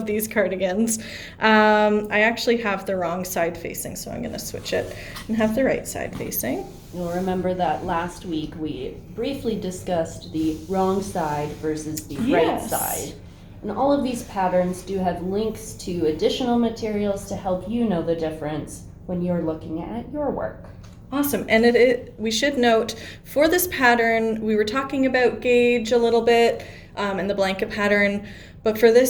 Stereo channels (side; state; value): both; identical; correlation 1.00